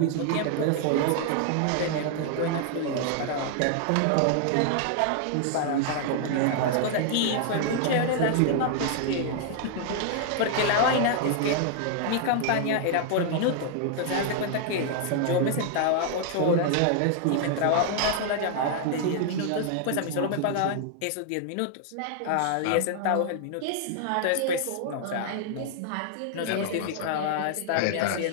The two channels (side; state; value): both; different; correlation 0.00